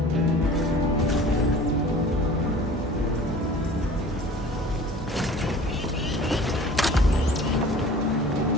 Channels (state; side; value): normal; both; correlation 0.44